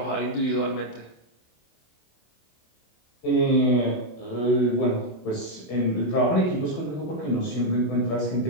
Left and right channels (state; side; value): late; right; 27 ms